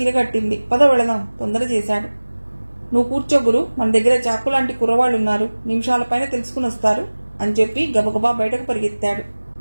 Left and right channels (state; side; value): inverted; both; correlation -1.00